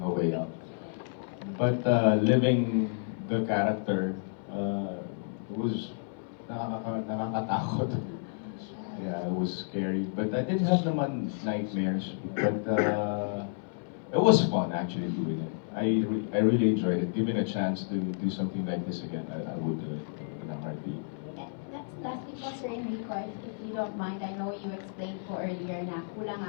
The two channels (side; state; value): right; silent; 57 dB below the other